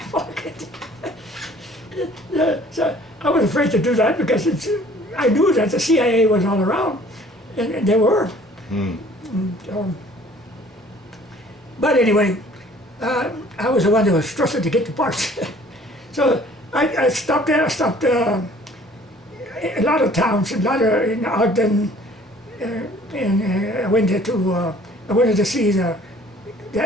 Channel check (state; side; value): normal; both; correlation 0.54